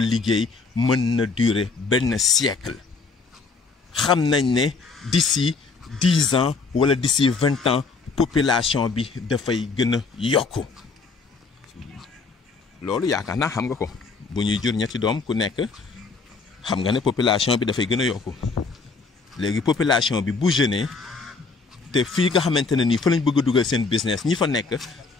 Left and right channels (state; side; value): quieter; right; 4.4 dB